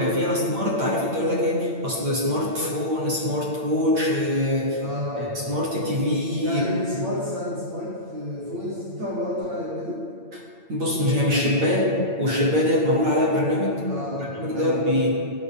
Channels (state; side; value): late; left; 8.9 ms